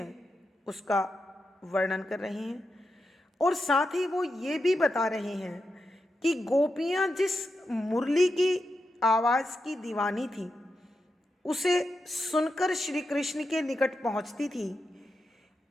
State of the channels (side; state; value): both; normal; correlation 0.87